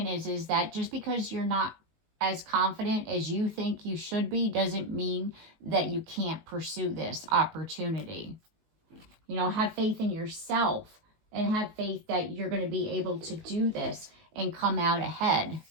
is that just because you're not as confident as you think you should be doesn't mean that you can't pursue this opportunity. You know, have faith in yourself and have faith that you're going to be able to do this and come out ahead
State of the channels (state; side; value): late; left; 19 ms